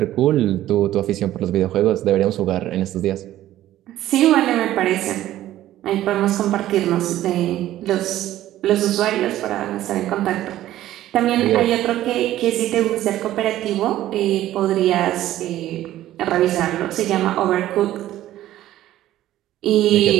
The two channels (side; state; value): left; quieter; 13.8 dB